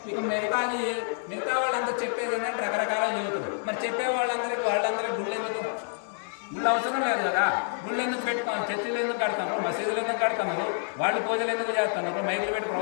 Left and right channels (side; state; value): right; silent; digital silence